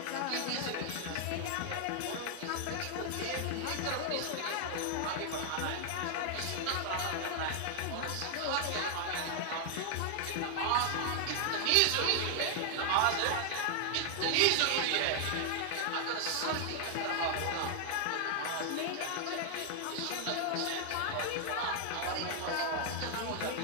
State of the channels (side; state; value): both; different; correlation 0.00